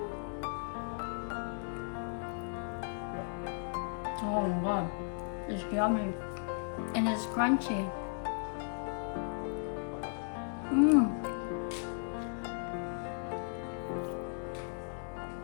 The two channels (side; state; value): right; silent; 54 dB below the other